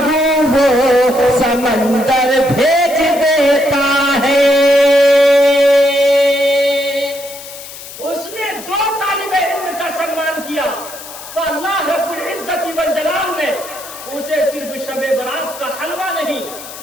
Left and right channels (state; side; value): noise; left; hiss, 14 dB below the sound